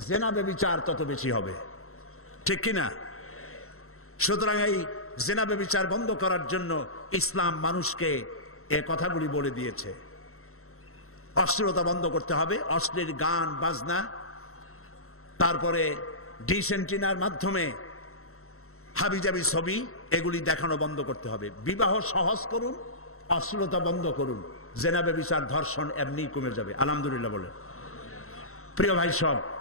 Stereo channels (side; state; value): right; late; 0.63 ms